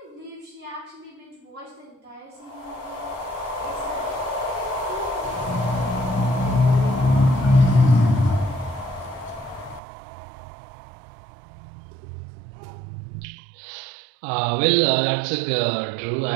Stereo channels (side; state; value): left; drops out; at 9.8 s